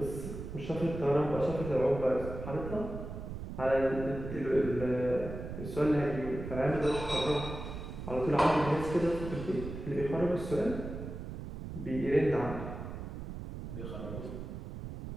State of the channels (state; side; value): noise; right; rumble, 8 dB below the sound